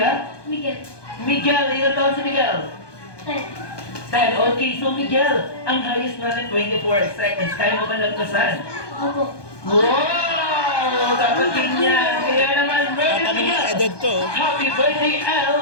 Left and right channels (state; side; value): late; right; 1.2 ms